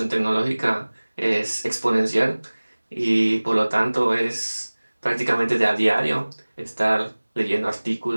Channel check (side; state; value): both; inverted; correlation -1.00